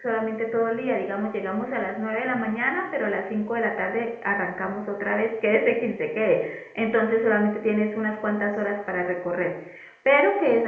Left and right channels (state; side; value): identical; both; correlation 1.00